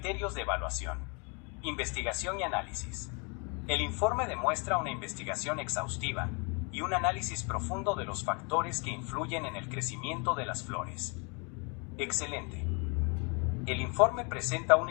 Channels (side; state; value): right; quieter; 33.4 dB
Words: de evaluación. Investigación y análisis. El informe demuestra una investigación exhaustiva y un análisis profundo de los factores que influyen en el crecimiento de las flores. Excelente. El informe presenta